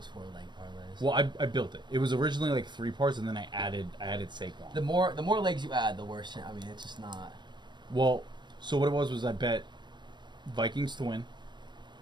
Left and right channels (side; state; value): left; late; 0.22 ms